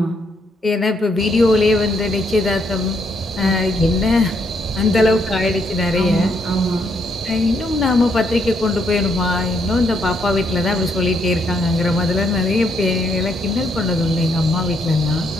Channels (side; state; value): both; normal; correlation 0.74